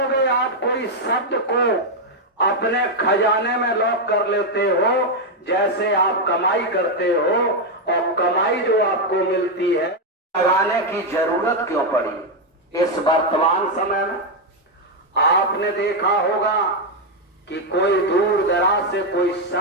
आप, कोई शब्द को अपने खजाने में लॉक कर लेते हो, जैसे आप कमाई करते हो और कमाई जो आपको मिलती है, लगाने की जरूरत क्यों पड़ी इस वर्तमान समय में? आपने देखा होगा कि कोई दूर दराज से कोई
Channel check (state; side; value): normal; both; correlation 0.02